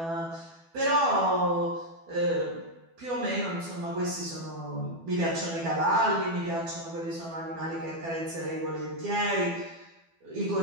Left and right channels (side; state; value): left; late; 12 ms